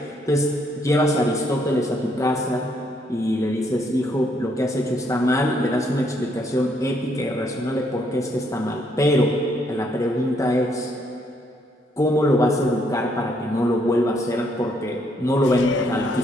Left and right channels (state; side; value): normal; both; correlation 0.71